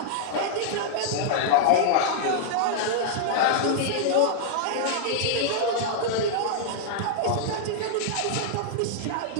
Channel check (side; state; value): both; different; correlation -0.01